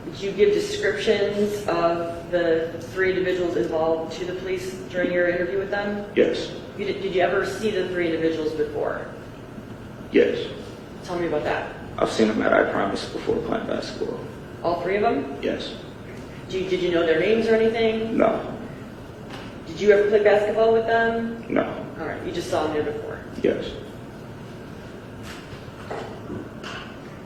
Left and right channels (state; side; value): identical; both; correlation 1.00